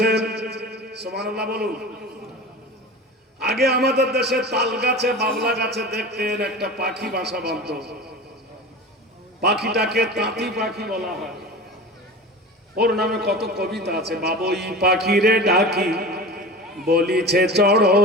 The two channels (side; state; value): both; normal; correlation 0.33